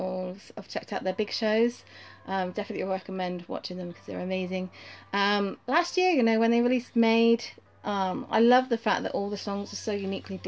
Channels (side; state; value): both; identical; correlation 1.00